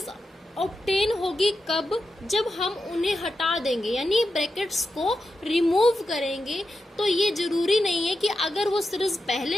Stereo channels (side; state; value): both; normal; correlation 0.89